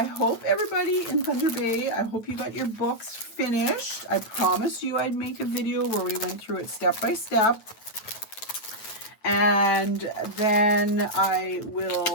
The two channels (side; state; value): right; late; 9.1 ms